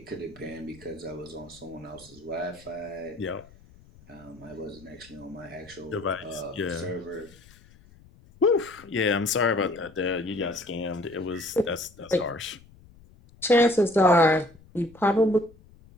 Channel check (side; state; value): left; noise; rumble, 25 dB below the sound